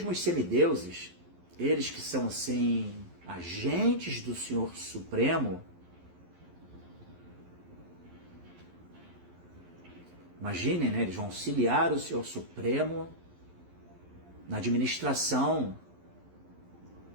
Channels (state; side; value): late; left; 11 ms